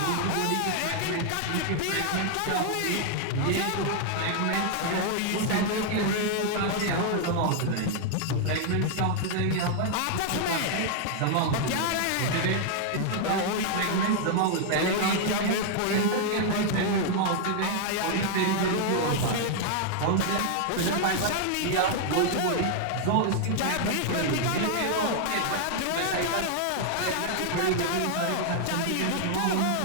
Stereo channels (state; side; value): different; both; correlation 0.00